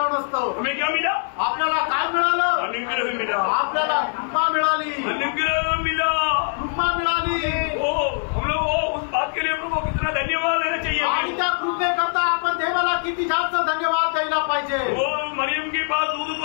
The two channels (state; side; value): silent; right; digital silence